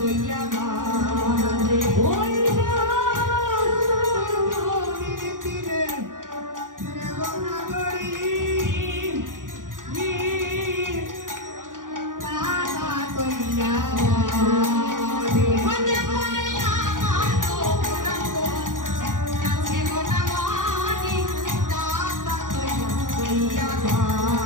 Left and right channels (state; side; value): late; left; 0.89 ms